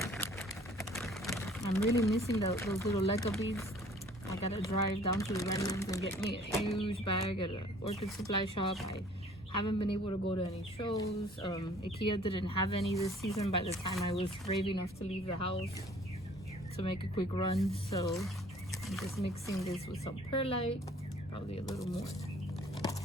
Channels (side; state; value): both; normal; correlation 0.54